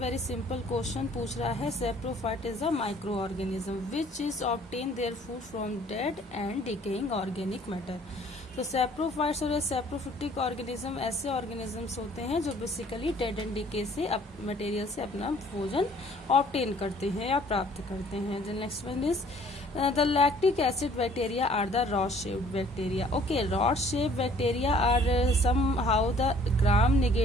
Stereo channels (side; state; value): both; normal; correlation 0.56